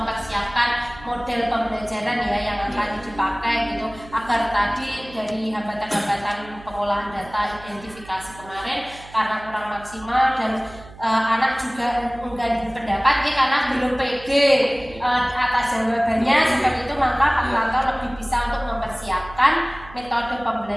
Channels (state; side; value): noise; right; hum, 19 dB below the sound